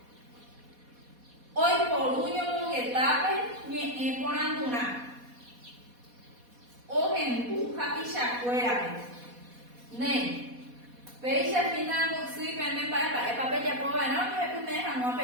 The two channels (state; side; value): late; left; 4.1 ms